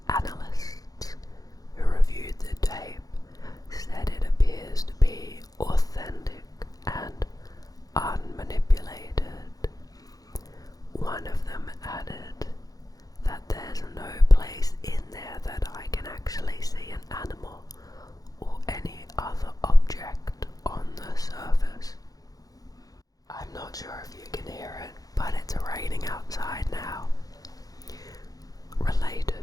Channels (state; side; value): late; right; 0.18 ms